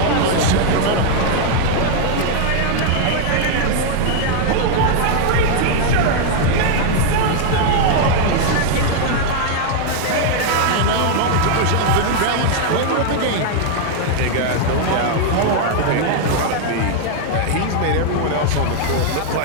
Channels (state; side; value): different; both; correlation 0.00